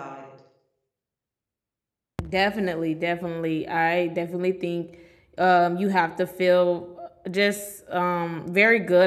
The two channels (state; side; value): identical; both; correlation 1.00